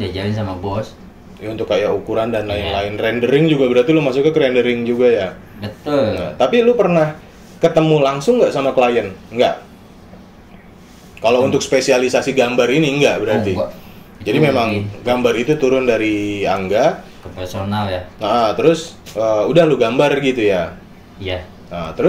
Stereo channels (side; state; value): both; identical; correlation 1.00